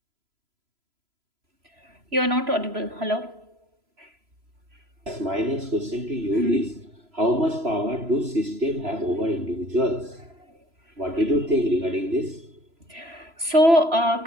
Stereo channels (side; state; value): left; late; 3.0 ms